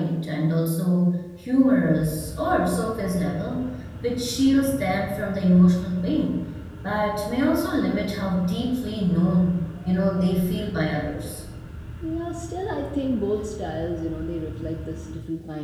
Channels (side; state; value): both; identical; correlation 1.00